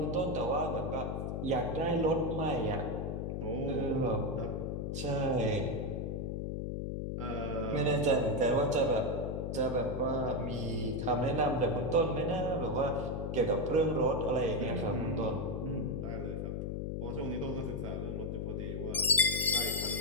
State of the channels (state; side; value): noise; left; hum, 2 dB below the sound